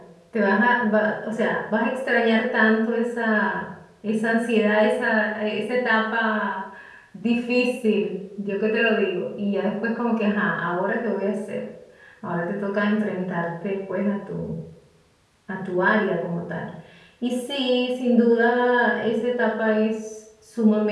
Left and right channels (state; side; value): identical; both; correlation 1.00